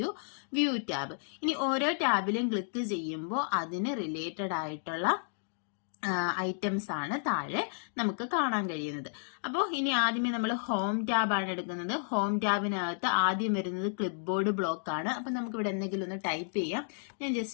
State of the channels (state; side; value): silent; right; digital silence